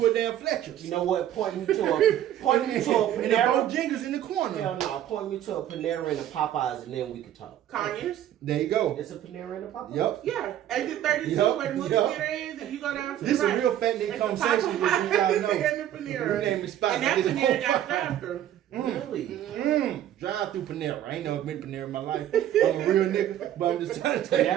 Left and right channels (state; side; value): quieter; left; 11.6 dB